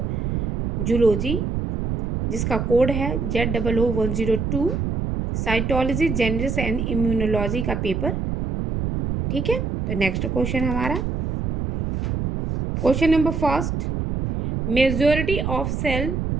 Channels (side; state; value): right; noise; rumble, 2 dB below the sound